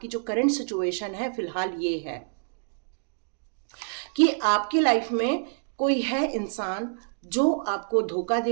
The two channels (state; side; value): silent; left; digital silence